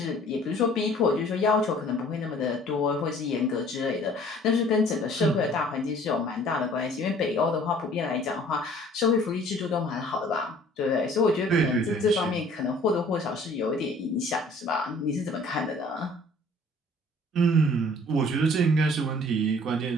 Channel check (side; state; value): both; normal; correlation 0.53